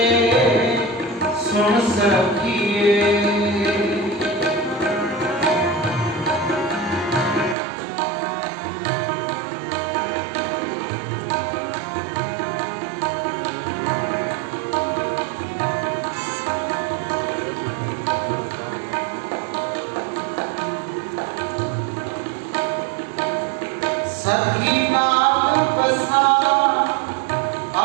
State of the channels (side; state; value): left; drops out; at 7.6 s